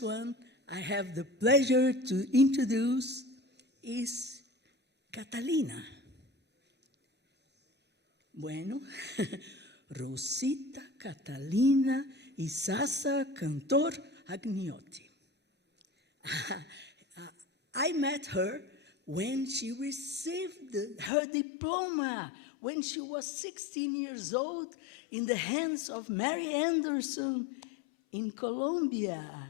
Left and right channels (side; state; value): right; drops out; at 21.1 s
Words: one I have the pleasure to introduce is Catalina. Bueno, Rosita Catalina Isaza-Cantor Agniotti. I met her when she received her diploma, when she was 16 years old, in the hands of Mary Anderson in